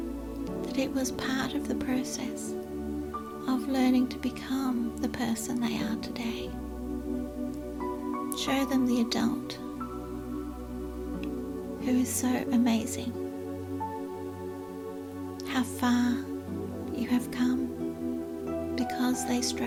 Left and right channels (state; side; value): identical; both; correlation 1.00